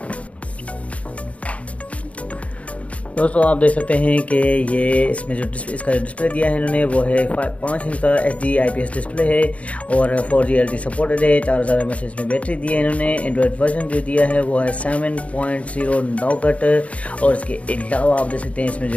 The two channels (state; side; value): late; right; 0.066 ms